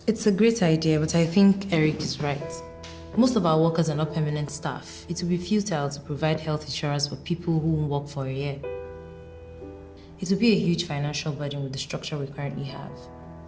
It's a great idea, but I think Eric is right. Most of our workers are not permanent staff. It would be futile to provide health insurance for people who won't work for a year. It would be a huge financial burden with the structure we currently have.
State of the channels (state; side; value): identical; both; correlation 1.00